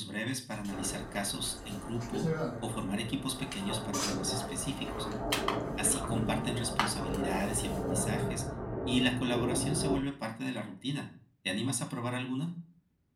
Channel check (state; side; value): identical; both; correlation 1.00